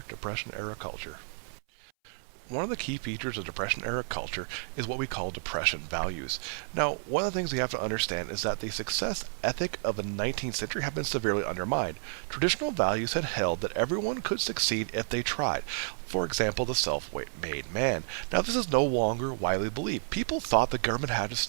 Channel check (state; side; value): silent; left; 57 dB below the other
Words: Depression-Era Culture. One of the key features of Depression-Era culture is what we call depression values. Now, one of the things we have to understand is that the success ethic of the 19th century have been severely undermined. Traditional values had held that everyone could succeed if they tried. For example, the self-made man. Now, this is no longer widely believed. People thought the government had to